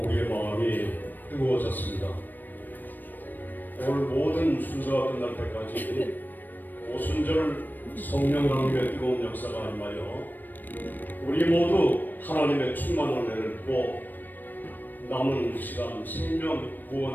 우리의 마음이 뜨거워졌습니다. 오늘 모든 순서가 끝날 때까지 오순절 성령 하나님의 뜨거운 역사가 임하여 우리 모두 하나님의 충만한 은혜를 받고 남은 시간 생명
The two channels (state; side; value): late; right; 0.090 ms